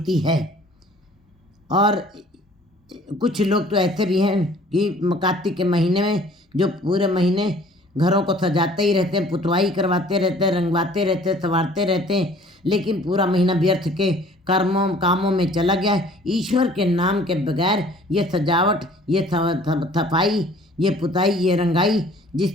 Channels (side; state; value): both; normal; correlation 0.53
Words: है। और कुछ लोग तो ऐसे भी हैं कि कार्तिक के महीने में जो पूरे महीने घरों को सजाते ही रहते हैं, पुतवाई करवाते रहते हैं, रंगवाते रहते हैं, संवारते रहते हैं, लेकिन पूरा महीना व्यर्थ के कामों में चला गया है। ईश्वर के नाम के बगैर ये सजावट, ये सफाई, ये पुताई, ये रंगाई